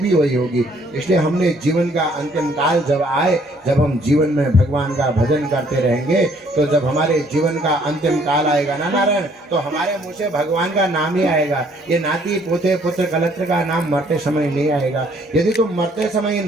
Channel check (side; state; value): both; normal; correlation 0.63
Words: वही होगी। इसलिए हमने जीवन का अंतिम काल जब आए, जब हम जीवन में भगवान का भजन करते रहेंगे, तो जब हमारे जीवन का अंतिम काल आएगा ना नारायण, तो हमारे मुंह से भगवान का नाम ही आएगा। ये नाती पोते पुत्र कलत्र का नाम मरते समय नहीं आएगा। यदि तुम मरते समय इन